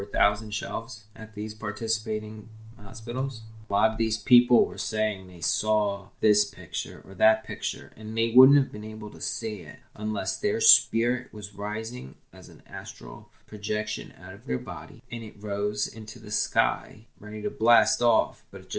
1,000 shelves at these participating hospitals. A lot of these people were saying they saw this picture or that picture, and they wouldn't have been able to see it unless their spirit was rising as an astral projection out of their body, and it rose into the sky, ready to blast off, but it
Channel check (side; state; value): both; identical; correlation 1.00